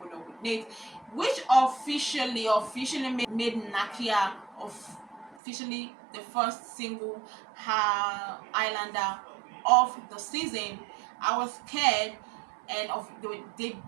up with Nate, which officially made Nakia officially the first single Islander of the season. I was scared, and they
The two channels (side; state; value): left; drops out; at 5.4 s